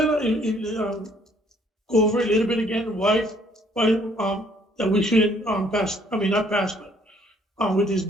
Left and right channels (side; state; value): both; normal; correlation 0.63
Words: of go over a little bit again why that we shouldn't pass, I mean, not pass, but with this